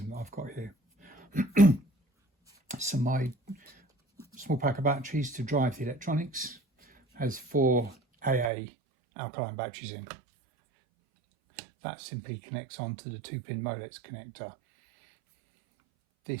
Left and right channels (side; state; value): left; drops out; at 8.5 s